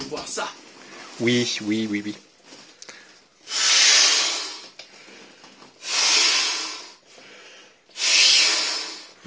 voir ça. Oui.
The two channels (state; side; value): identical; both; correlation 1.00